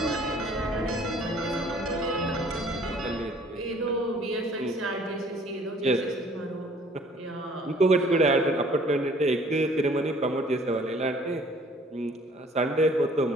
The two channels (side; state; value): both; normal; correlation 0.56